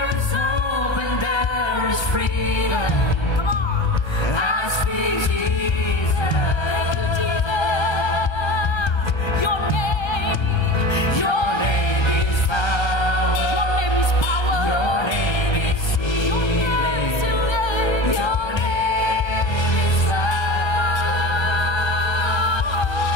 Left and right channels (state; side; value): late; right; 1.3 ms